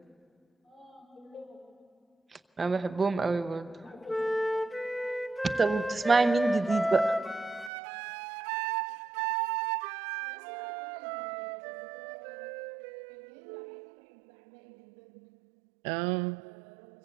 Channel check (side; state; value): left; drops out; at 7.7 s